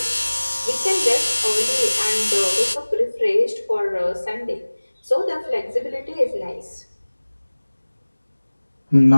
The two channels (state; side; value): inverted; both; correlation -1.00